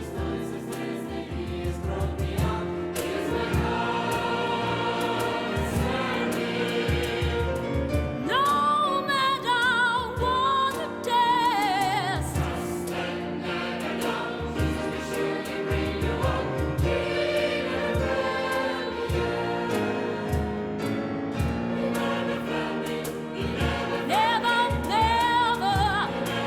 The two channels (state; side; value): identical; both; correlation 1.00